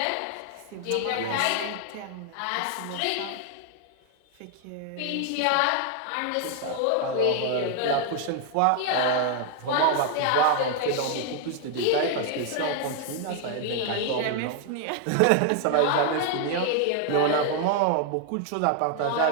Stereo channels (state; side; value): different; both; correlation 0.00